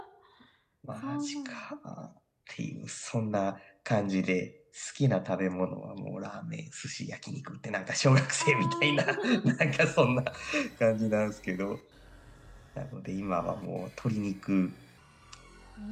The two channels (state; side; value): identical; both; correlation 1.00